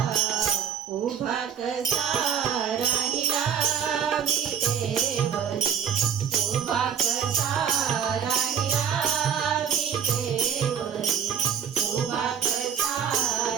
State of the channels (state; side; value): quieter; left; 7.9 dB